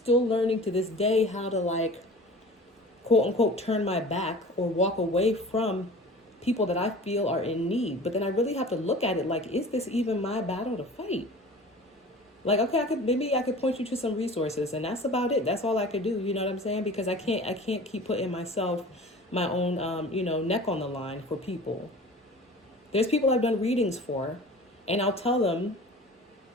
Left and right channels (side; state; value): both; normal; correlation 0.40